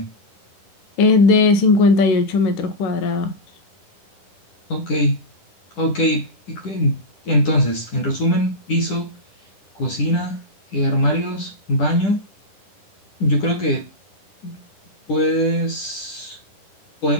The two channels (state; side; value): late; right; 10 ms